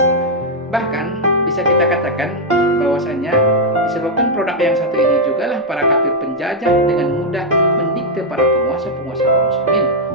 Bahkan bisa kita katakan bahwasanya disebabkan produk yang satu ini juga lah para kafir penjajah dengan mudah mendikte para penguasa-penguasa kaum muslimin.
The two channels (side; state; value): both; normal; correlation -0.01